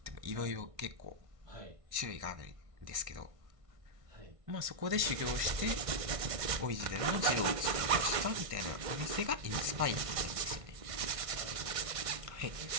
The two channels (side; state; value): left; late; 1.6 ms